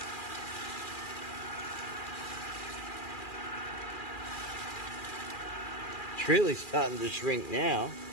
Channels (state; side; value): late; right; 2.4 ms